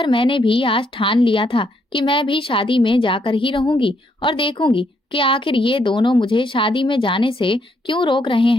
मैंने भी आज ठान लिया था कि मैं भी शादी में जाकर ही रहूंगी और देखूंगी कि आखिर ये दोनों मुझे शादी में जाने से क्यों रोक रहे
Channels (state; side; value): normal; both; correlation 0.73